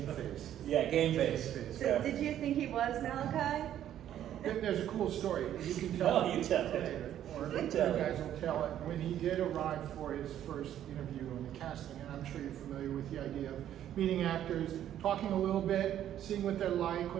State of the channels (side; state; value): left; quieter; 11.1 dB